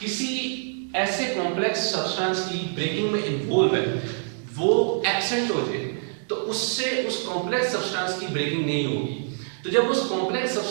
किसी ऐसे कॉम्प्लेक्स सब्सटेंस की ब्रेकिंग में इन्वॉल्व है वो एब्सेंट हो जाए, तो उससे उस कॉम्प्लेक्स सब्सटेंस की ब्रेकिंग नहीं होगी। तो जब उस कॉम्प्लेक्स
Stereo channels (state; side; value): silent; left; digital silence